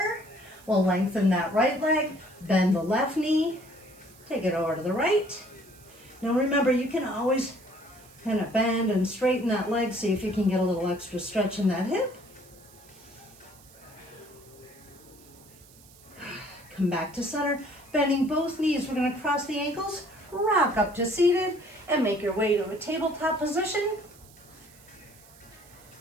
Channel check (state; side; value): noise; right; hiss, 24 dB below the sound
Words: we'll lengthen that right leg, bend the left knee, take it over to the right. Now remember, you can always kind of bend and straighten that leg, see if you can get a little extra stretch in that hip. Come back to center, bending both knees. We're going to cross the ankles, rock up to seated, and make your way to a tabletop position.